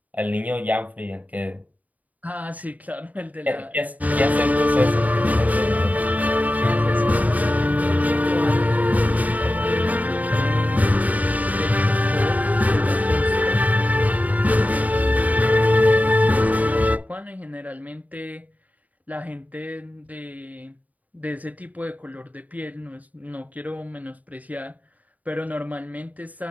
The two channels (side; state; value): left; late; 0.074 ms